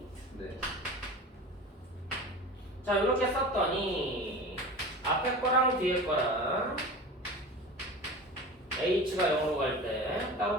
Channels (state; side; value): normal; both; correlation 0.34